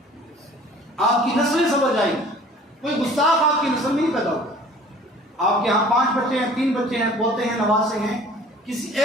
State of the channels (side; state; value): both; normal; correlation 0.49